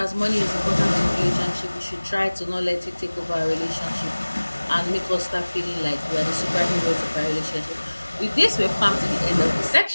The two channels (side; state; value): both; inverted; correlation -1.00